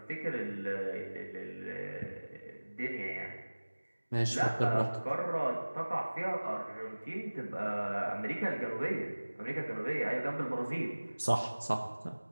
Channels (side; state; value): both; inverted; correlation -1.00